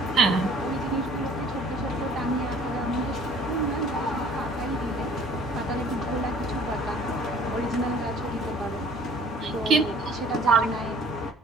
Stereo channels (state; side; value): normal; both; correlation 0.52